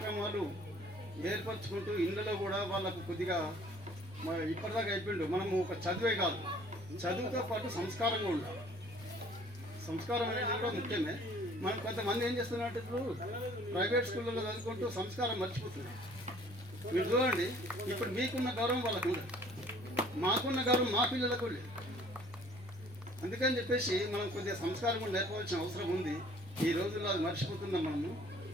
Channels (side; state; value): both; normal; correlation 0.55